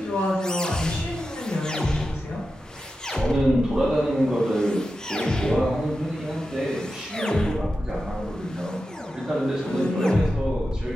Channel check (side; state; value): both; normal; correlation 0.91